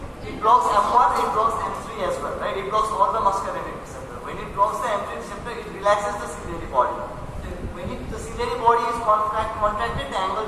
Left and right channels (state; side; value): identical; both; correlation 1.00